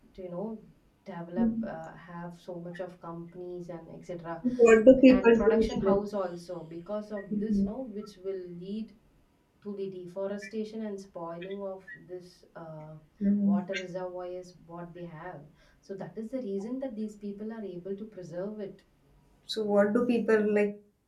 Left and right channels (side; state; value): both; identical; correlation 1.00